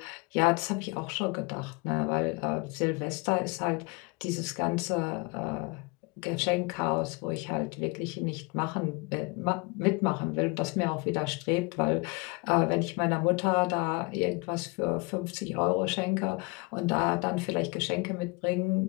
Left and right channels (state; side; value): quieter; right; 28.0 dB